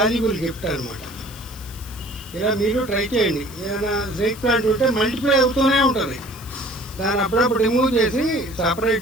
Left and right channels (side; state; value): left; noise; hiss, 18 dB below the sound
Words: గిఫ్ట్ అనమాట. ఇలా మీరు ట్రై చేయండి. ఏదైనా స్నేక్ ప్లాంట్ ఉంటే మల్టిప్లై అవుతూనే ఉంటుంది. దాన్ని అప్పుడప్పుడు రిమూవ్ చేసి